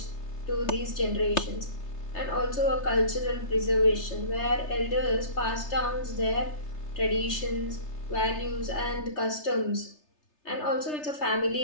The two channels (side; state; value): right; late; 3.3 ms